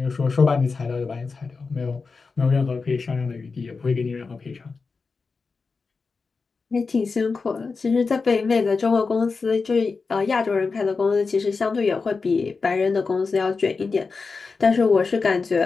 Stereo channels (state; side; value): quieter; right; 4.5 dB